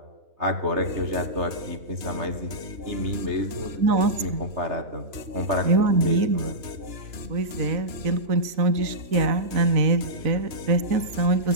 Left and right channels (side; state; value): left; late; 3.9 ms